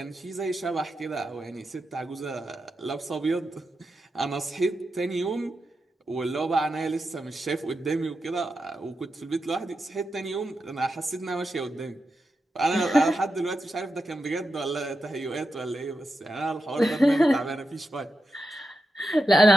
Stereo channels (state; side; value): normal; both; correlation 0.88